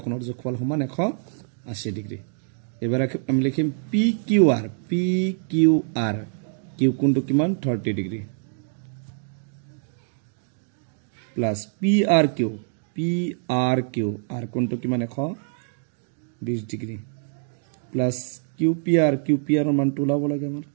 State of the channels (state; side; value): silent; left; 62 dB below the other